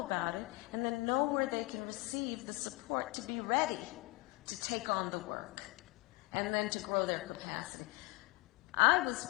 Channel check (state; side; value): quieter; right; 24.0 dB